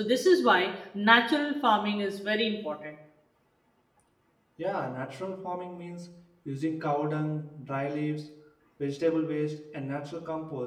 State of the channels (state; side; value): identical; both; correlation 1.00